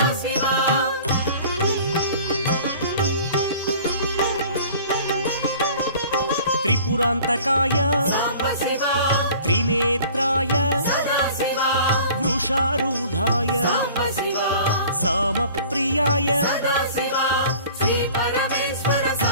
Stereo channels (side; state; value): both; inverted; correlation -0.46